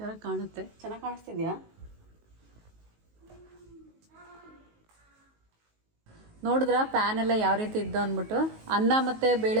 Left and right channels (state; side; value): late; left; 19 ms